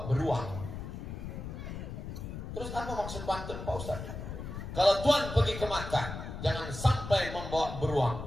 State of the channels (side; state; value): left; noise; rumble, 8 dB below the sound